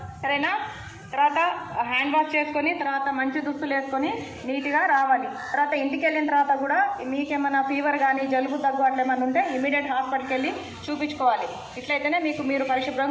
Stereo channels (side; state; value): both; identical; correlation 1.00